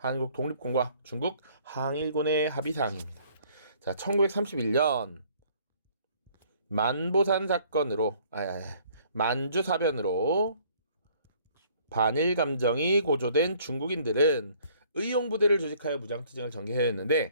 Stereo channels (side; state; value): both; inverted; correlation -0.59